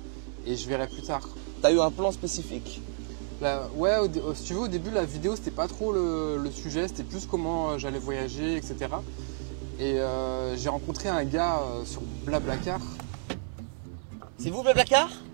et je verrai plus tard. Tu as eu un plan spécifique? Ouais, si tu veux, au début, la vidéo, c'était pas trop le sujet, c'était plus comment j'allais voyager, etc. Et j'ai rencontré un gars sur Blablacar. C'est vous, Blablacar?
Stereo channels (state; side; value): silent; left; 58 dB below the other